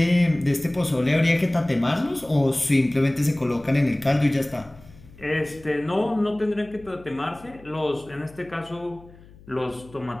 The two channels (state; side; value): noise; left; hum, 23 dB below the sound